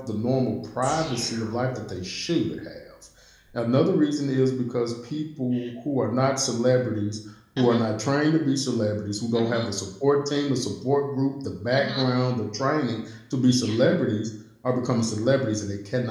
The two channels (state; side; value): identical; both; correlation 1.00